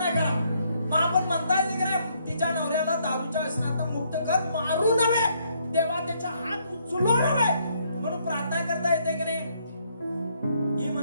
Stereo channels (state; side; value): inverted; both; correlation -0.71